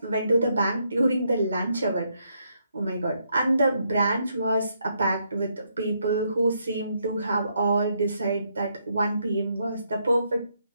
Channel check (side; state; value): both; inverted; correlation -0.76